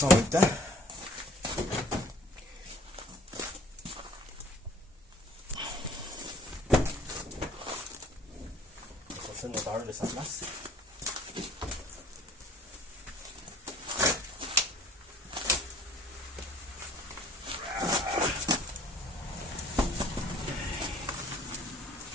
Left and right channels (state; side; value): normal; both; correlation 0.53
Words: en même temps. déplacer le moteur de sa place.